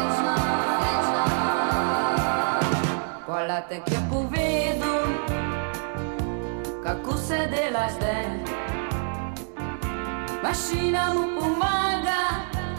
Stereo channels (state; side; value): silent; left; 61 dB below the other